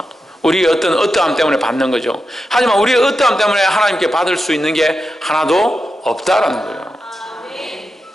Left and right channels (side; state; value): both; normal; correlation 0.89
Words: 우리의 어떠함 때문에 받는 거죠. 하지만 우리의 어떠함 때문에 하나님께 받을 수 있는 게 하나도 없다라는 거예요.